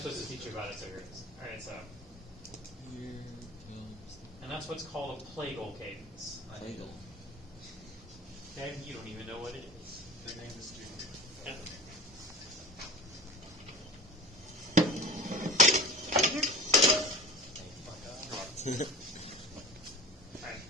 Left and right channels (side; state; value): both; normal; correlation 0.33